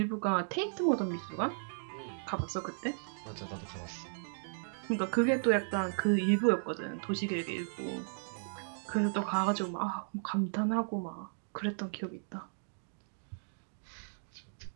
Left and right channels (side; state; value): left; silent; digital silence